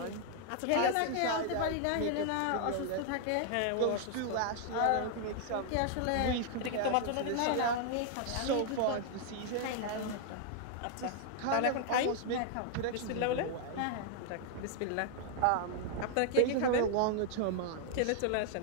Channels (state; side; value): different; both; correlation 0.00